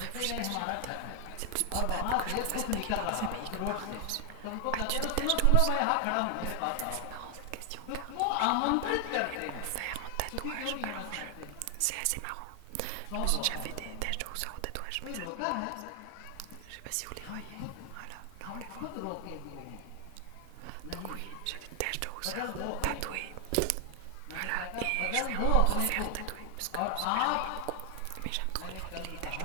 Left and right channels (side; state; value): both; different; correlation 0.00